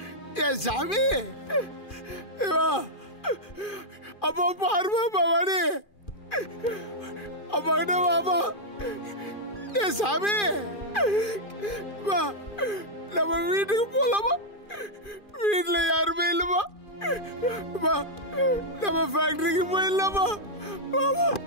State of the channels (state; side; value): late; right; 2.4 ms